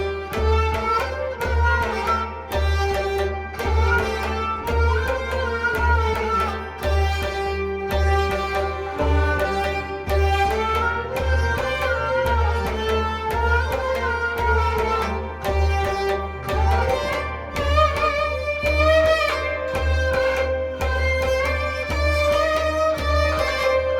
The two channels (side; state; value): both; identical; correlation 1.00